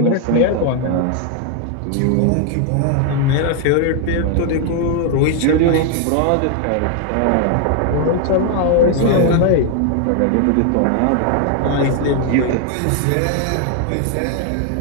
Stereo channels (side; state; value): both; different; correlation 0.00